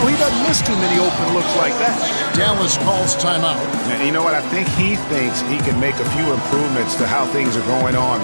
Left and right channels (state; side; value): inverted; both; correlation -1.00